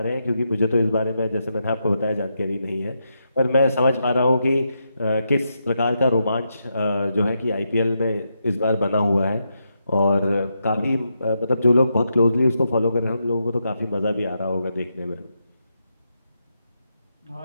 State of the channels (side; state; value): both; inverted; correlation -0.83